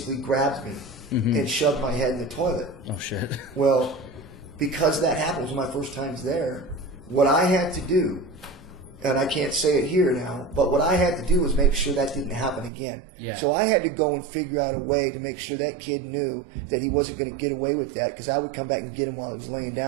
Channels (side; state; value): left; drops out; at 12.7 s